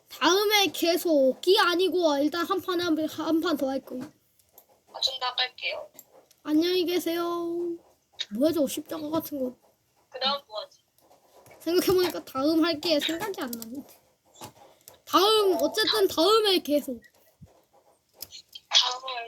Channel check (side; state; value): both; identical; correlation 1.00